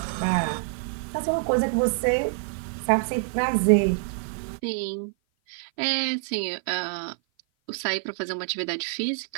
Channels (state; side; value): silent; left; 55 dB below the other